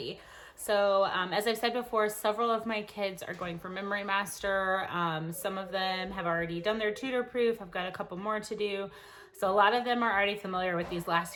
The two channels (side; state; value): both; identical; correlation 1.00